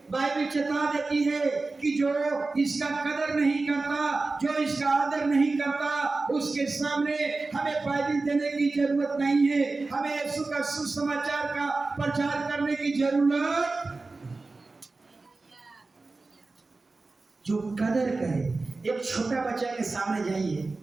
बाइबिल चेता देती है कि जो इसका कदर नहीं करता, जो इसका आदर नहीं करता, उसके सामने हमें बाइबिल देने की जरूरत नहीं है। हमें यीशु का सुसमाचार का प्रचार करने की जरूरत। जो कदर करे, एक छोटा बच्चा के सामने जाइए,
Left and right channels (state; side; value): quieter; left; 3.6 dB